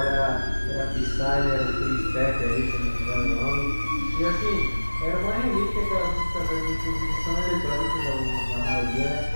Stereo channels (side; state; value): both; inverted; correlation -1.00